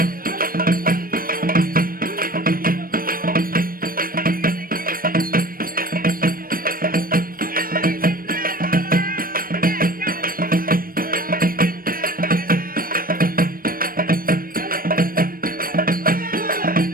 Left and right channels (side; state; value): left; late; 0.41 ms